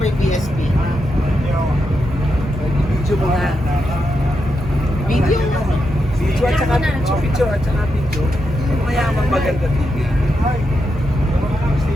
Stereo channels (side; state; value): both; normal; correlation 0.85